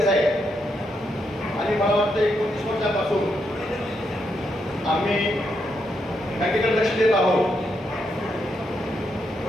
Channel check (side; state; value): both; normal; correlation 0.80